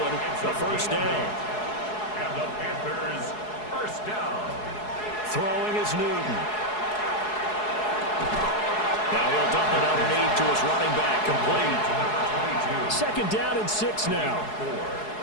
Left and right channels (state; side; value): late; right; 4.7 ms